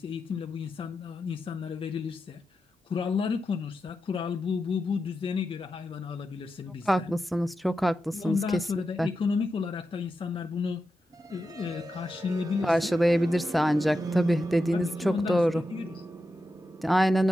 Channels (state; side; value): normal; both; correlation 0.89